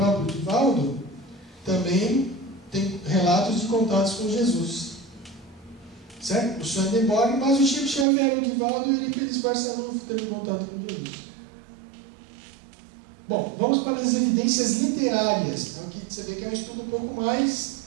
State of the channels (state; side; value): drops out; left; at 8.1 s